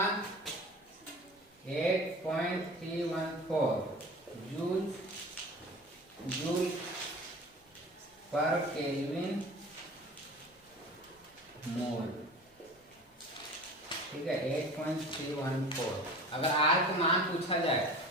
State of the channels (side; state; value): both; normal; correlation 0.38